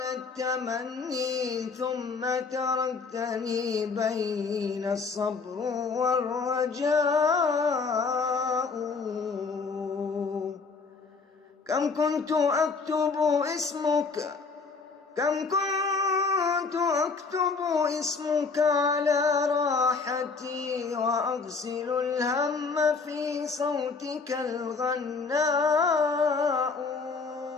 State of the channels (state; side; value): quieter; right; 4.6 dB